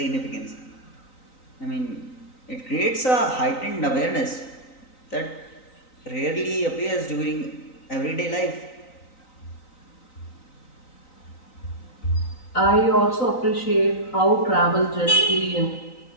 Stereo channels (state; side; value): late; right; 3.9 ms